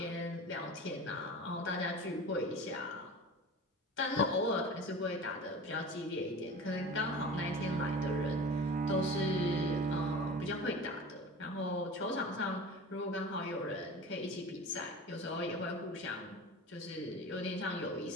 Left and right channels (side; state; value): both; normal; correlation 0.36